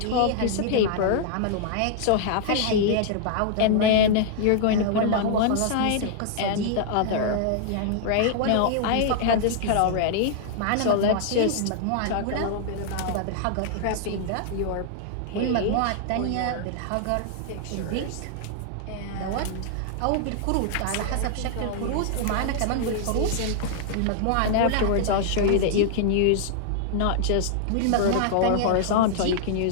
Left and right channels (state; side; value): different; both; correlation -0.01